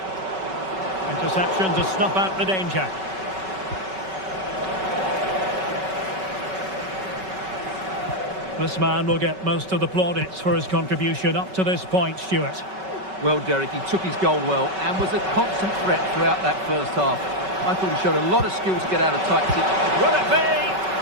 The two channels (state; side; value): late; left; 5.3 ms